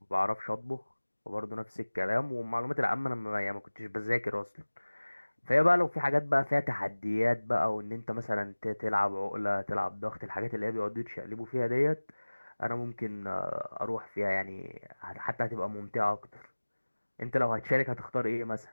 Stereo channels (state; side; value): inverted; both; correlation -1.00